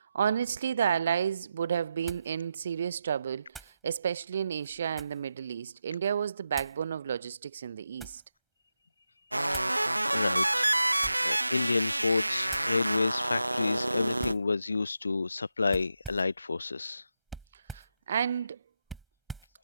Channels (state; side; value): inverted; both; correlation -0.87